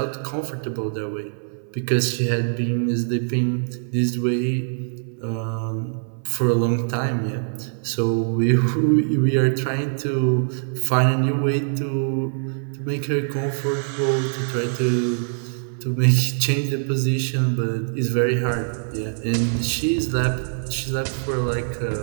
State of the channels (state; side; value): silent; left; 63 dB below the other